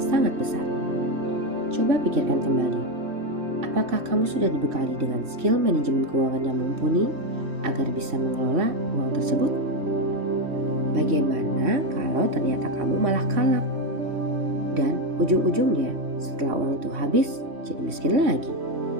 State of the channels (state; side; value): late; left; 3.2 ms